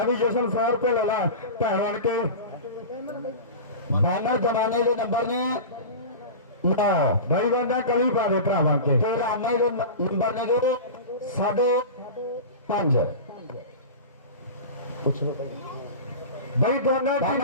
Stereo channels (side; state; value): both; inverted; correlation -0.30